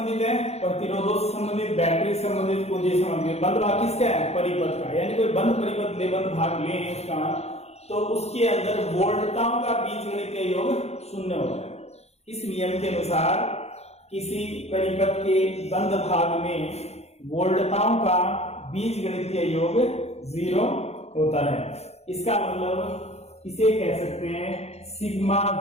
है, प्रतिरोधों से संबंधित, बैटरी से संबंधित, पूंजी से संबंधित। बंद भाग किसका है, परिपथ का, यानी कोई बंद परिपथ ले, बंद भाग ले उसका, तो उसके अंदर वोल्टताओं का बीजगणितीय योग 0 होता है। इस नियम के अनुसार किसी परिपथ के बंद भाग में वोल्टताओं का बीजगणितीय योग 0 होता है। इसका मतलब इसे कह सकते हैं sigma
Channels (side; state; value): right; late; 0.31 ms